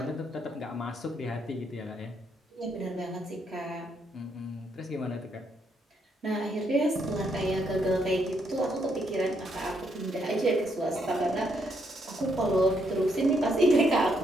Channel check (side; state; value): both; normal; correlation 0.75